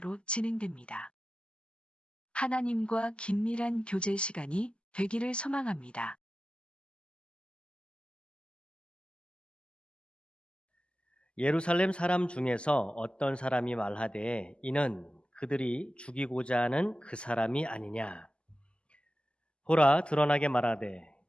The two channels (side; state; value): right; late; 0.053 ms